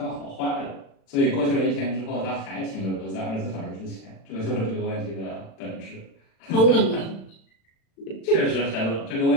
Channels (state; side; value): late; right; 36 ms